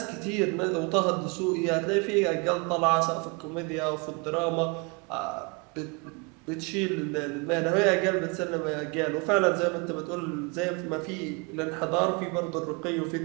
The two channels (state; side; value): quieter; left; 30.6 dB